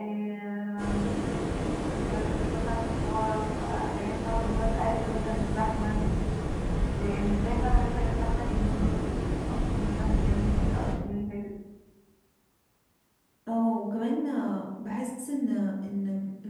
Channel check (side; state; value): both; identical; correlation 1.00